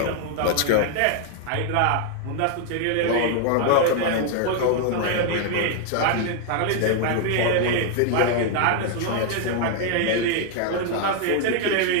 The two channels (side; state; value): both; different; correlation 0.00